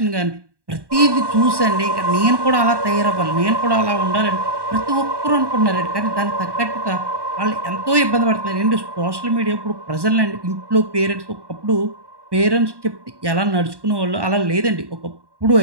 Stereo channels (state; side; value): late; left; 1.1 ms